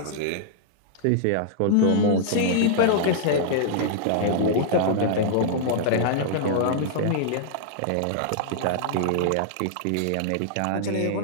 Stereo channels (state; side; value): different; both; correlation -0.01